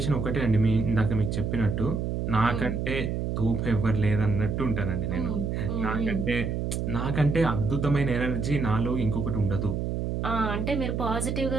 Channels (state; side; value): noise; right; hum, 2 dB below the sound